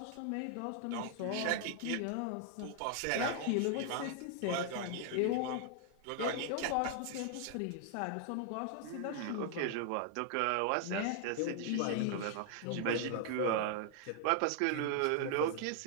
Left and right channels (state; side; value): different; both; correlation 0.00